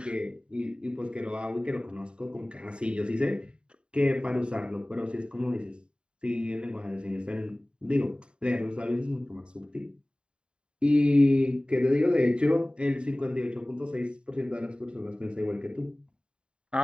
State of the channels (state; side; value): late; left; 0.052 ms